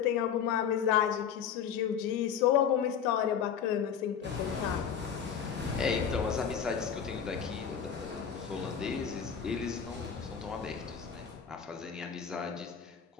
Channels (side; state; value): right; quieter; 7.7 dB